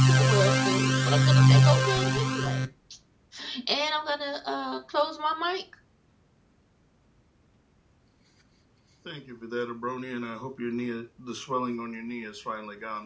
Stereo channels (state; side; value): identical; both; correlation 1.00